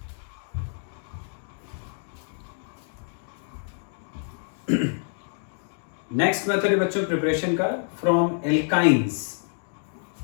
Next method है बच्चों प्रिपरेशन का फ्रॉम एल्काइंस।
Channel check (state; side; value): silent; right; digital silence